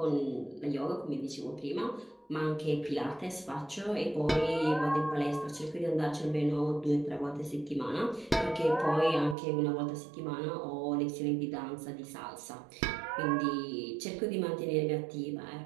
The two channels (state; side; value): drops out; left; at 9.3 s